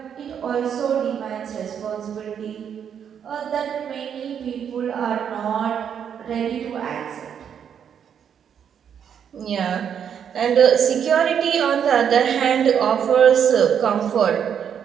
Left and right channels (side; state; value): left; quieter; 8.2 dB